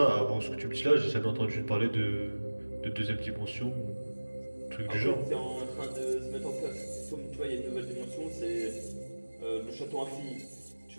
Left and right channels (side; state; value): both; inverted; correlation -1.00